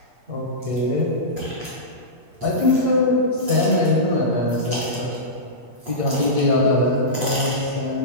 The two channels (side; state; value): left; late; 8.6 ms